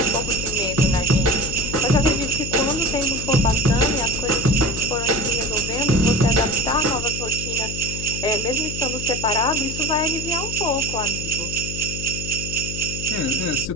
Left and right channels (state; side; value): noise; left; hum, 7 dB below the sound